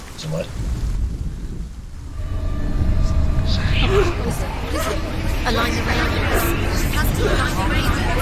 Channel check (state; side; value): identical; both; correlation 1.00